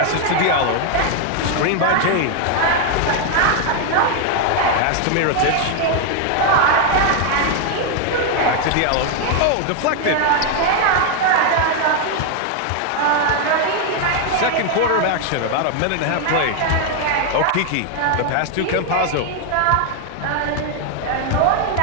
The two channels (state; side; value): different; both; correlation 0.01